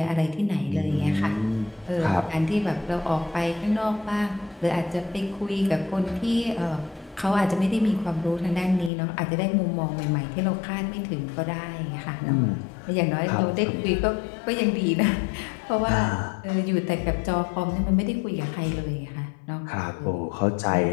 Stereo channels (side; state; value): right; drops out; at 8.9 s